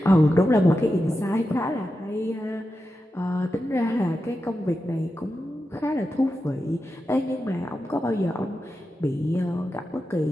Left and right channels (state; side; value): normal; both; correlation 0.90